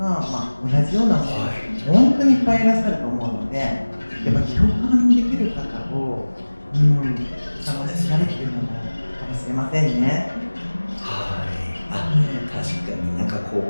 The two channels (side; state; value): both; inverted; correlation -1.00